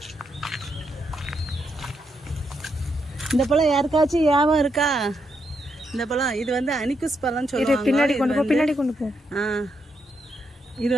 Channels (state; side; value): normal; both; correlation 0.80